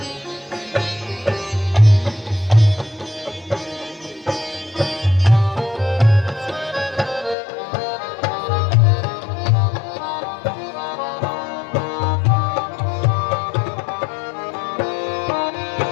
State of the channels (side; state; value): right; drops out; at 7.4 s